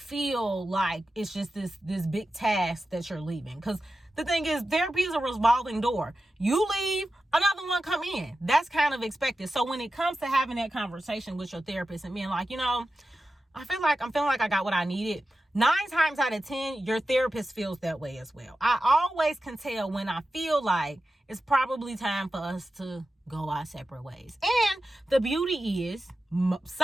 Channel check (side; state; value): both; normal; correlation 0.92